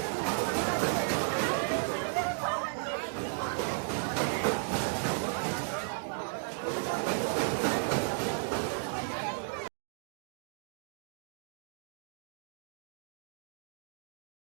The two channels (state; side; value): silent; left; digital silence